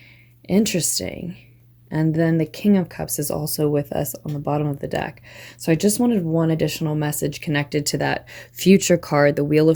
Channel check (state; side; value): identical; both; correlation 1.00